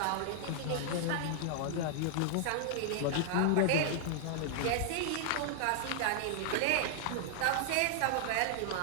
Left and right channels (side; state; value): both; different; correlation -0.01